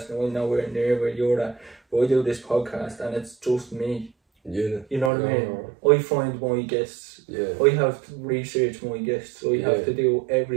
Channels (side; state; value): left; drops out; at 5.1 s